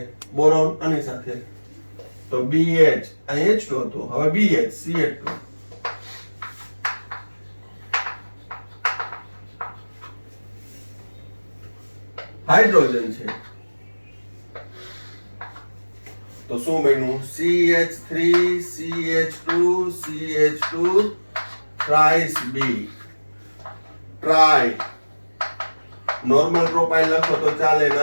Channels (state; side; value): inverted; both; correlation -1.00